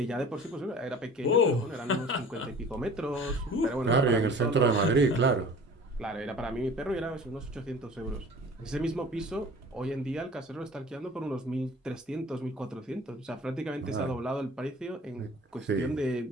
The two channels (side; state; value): both; normal; correlation 0.45